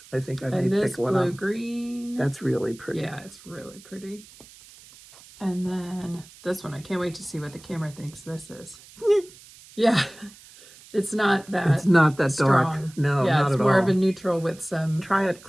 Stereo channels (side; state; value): right; noise; hiss, 22 dB below the sound